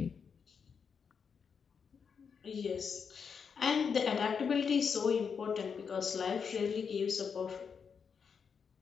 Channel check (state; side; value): quieter; right; 6.3 dB